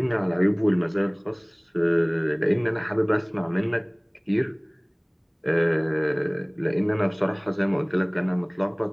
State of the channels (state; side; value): identical; both; correlation 1.00